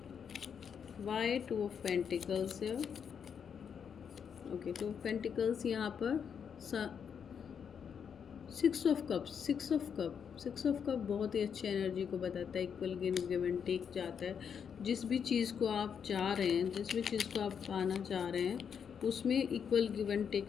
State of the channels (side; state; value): right; quieter; 7.3 dB